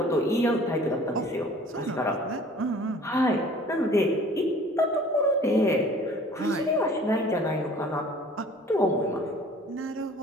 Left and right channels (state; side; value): normal; both; correlation 0.49